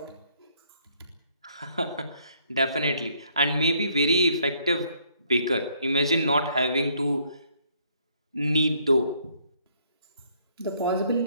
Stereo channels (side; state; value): both; inverted; correlation -0.67